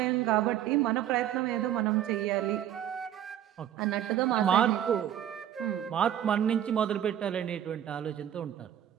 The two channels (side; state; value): left; quieter; 10.8 dB